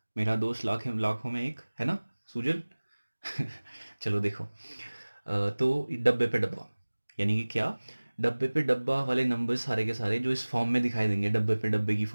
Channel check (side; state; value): both; inverted; correlation -1.00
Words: मेरा दोस्त लाखों में एक, है ना सुजल. चलो देखो, तो डब्बे पे डब्बा यानी कि क्या. डब्बे पे डब्बा वाले नंबर्स सारे के सारे जो इस फॉर्म में दिखाई देंगे, डब्बे पे डब्बे की